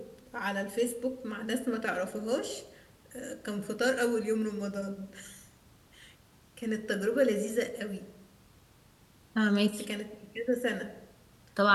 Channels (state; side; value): identical; both; correlation 1.00